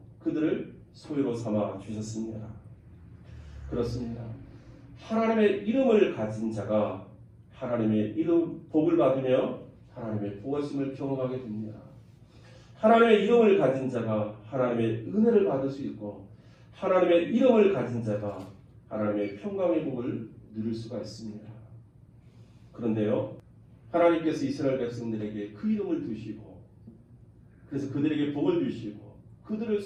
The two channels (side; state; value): both; identical; correlation 1.00